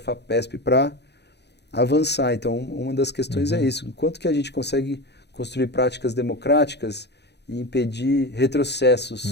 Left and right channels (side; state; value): right; late; 0.49 ms